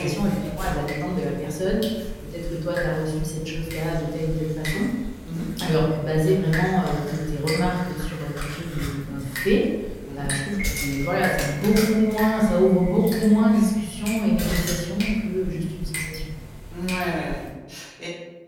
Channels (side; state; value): both; identical; correlation 1.00